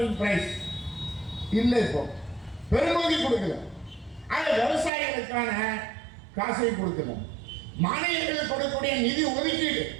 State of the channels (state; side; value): drops out; left; at 4.9 s